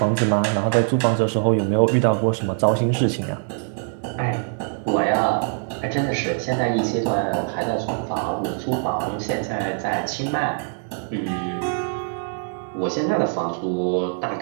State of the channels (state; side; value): silent; left; 57 dB below the other